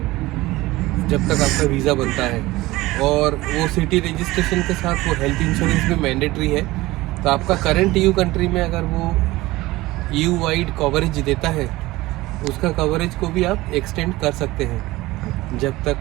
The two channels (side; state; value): left; quieter; 19.0 dB